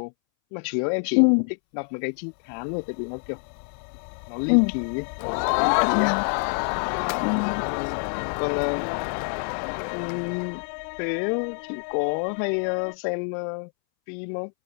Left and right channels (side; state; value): right; silent; 61 dB below the other